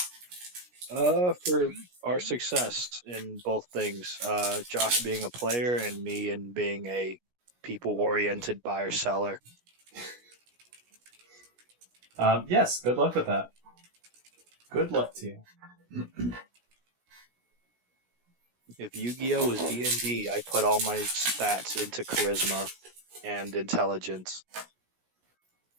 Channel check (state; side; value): late; left; 17 ms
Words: For our success in both things. Josh being a player and me and being a people-oriented buyer seller. Yes, good luck with that. Good luck to you. If Yu-Gi-Oh is D&D, I put all my stats into charisma and intelligence.